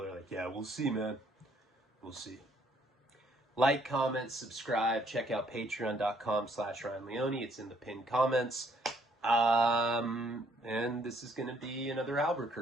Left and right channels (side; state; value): both; normal; correlation 0.66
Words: that are like, yeah, we'll see, man. We'll see. Like, comment, subscribe. Check out patreon.com/Ryan Leone. It's in the pinned comments. And this is going to be another